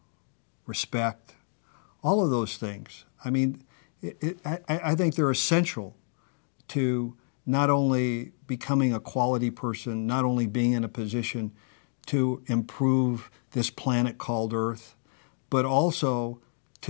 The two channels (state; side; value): silent; right; 59 dB below the other